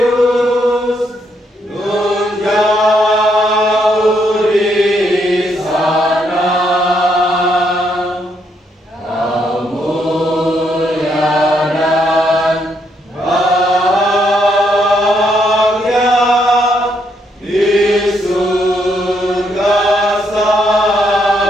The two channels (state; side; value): normal; both; correlation 0.75